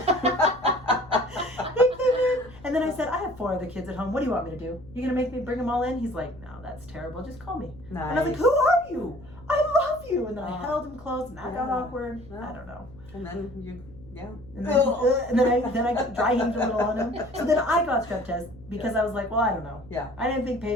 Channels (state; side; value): noise; left; hum, 20 dB below the sound